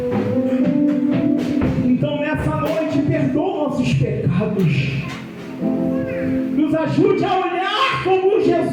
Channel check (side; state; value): both; identical; correlation 1.00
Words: Então nessa noite, perdoa nossos pecados. Nos ajude a olhar como